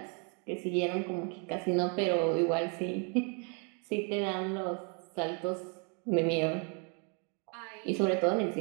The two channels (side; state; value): left; quieter; 37.8 dB